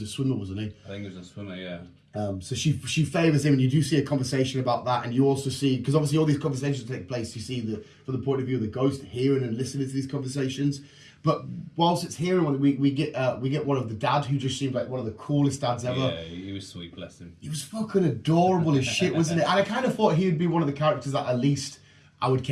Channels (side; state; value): both; identical; correlation 1.00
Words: a swimmer, wasn't he? I think he was a swimmer, yeah. So she favours him, and you do see a conversation about that, and you also see, because obviously all these conversations take place, you see from the point of view of the ghost hearing and listening to these conversations. But whilst it's hearing one, we get one of the dad, who just seemed like one of the coolest dads ever. Yeah, he was sweet, bless him. He was fucking adorable as shit, wasn't it? And I kind of thought he would be one of the characters that at least I would